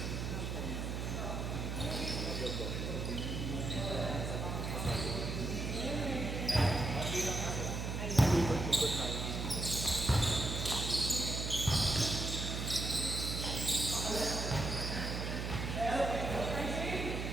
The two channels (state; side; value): noise; right; hum, 3 dB below the sound